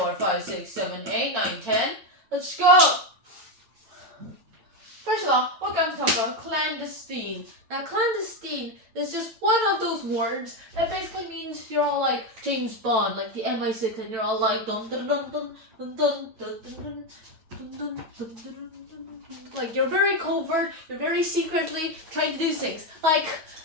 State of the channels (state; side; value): late; left; 9.0 ms